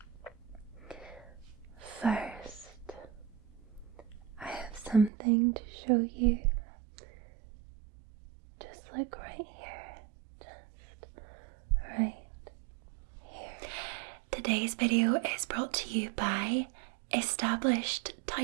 First, I have something to show you. Just like right here. Just right here. Today's video is brought to you by Established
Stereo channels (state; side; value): drops out; left; at 5.1 s